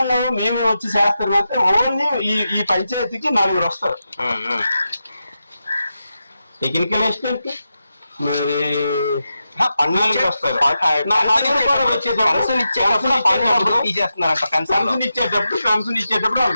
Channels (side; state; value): both; inverted; correlation -0.89